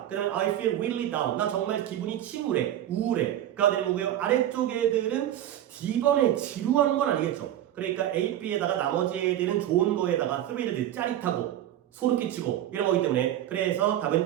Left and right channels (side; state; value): left; quieter; 12.0 dB